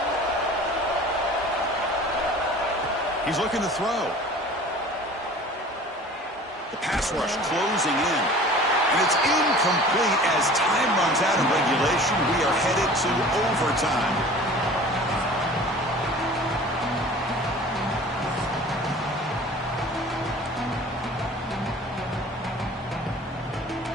He's looking to throw. The pass rush closing in. And it's incomplete as time runs out of regulation. We are headed to overtime.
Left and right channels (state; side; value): normal; both; correlation 0.44